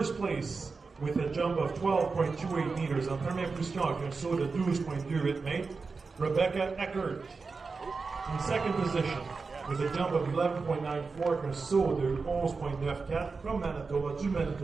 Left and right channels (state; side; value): quieter; left; 4.5 dB